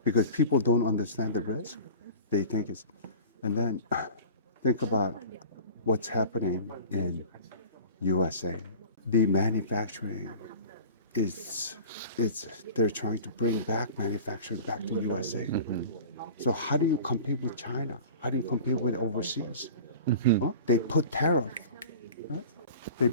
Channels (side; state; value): both; inverted; correlation -0.39